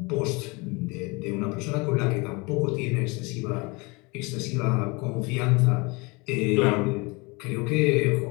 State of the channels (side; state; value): right; quieter; 27.3 dB